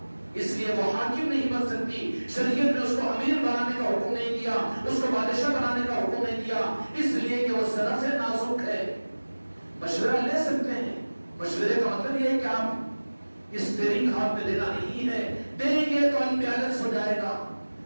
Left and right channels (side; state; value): both; inverted; correlation -1.00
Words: اس لیے وہ حاکم نہیں بن سکتی۔ شریعت نے اس کو امیر بنانے کا حکم نہیں دیا، اس کو بادشاہ بنانے کا حکم نہیں دیا، اس لیے کہ وہ صرف نازک ہے۔ مشورہ لے سکتے ہیں، مشورے کا مطلب یہ ہے کہ آپ اسٹیئرنگ ہاتھ میں دینا نہیں ہے، دیں گے تو انبیلنس ہو جائے گا۔